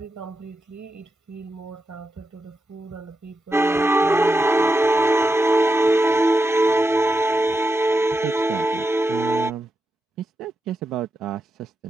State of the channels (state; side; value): normal; both; correlation 0.87